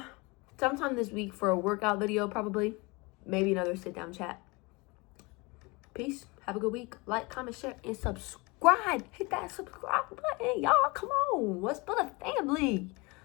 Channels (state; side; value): quieter; right; 26.3 dB